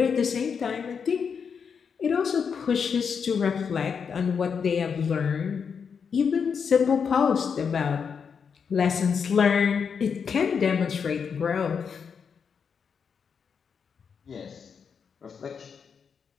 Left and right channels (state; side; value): quieter; right; 6.4 dB